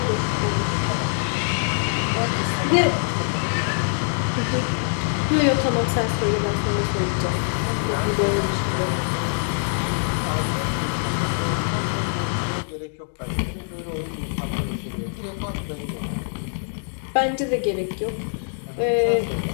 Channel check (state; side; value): silent; right; digital silence